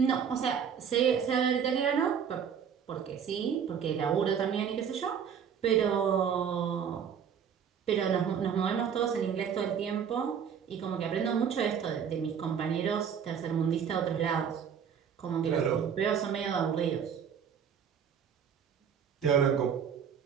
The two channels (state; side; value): quieter; left; 7.6 dB